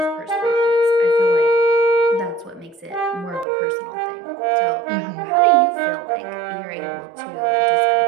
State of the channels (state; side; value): drops out; left; at 3.5 s